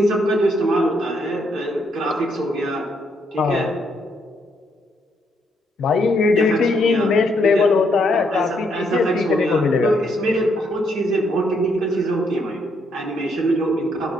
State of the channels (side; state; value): both; normal; correlation 0.74